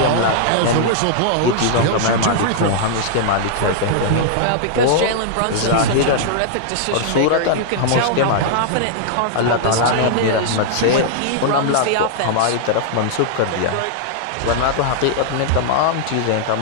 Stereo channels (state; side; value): different; both; correlation -0.01